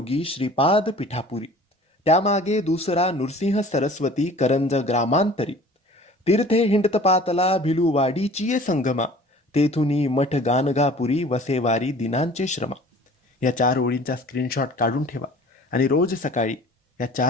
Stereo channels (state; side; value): normal; both; correlation 0.46